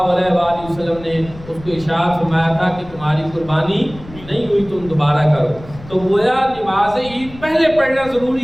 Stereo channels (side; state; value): left; noise; rumble, 17 dB below the sound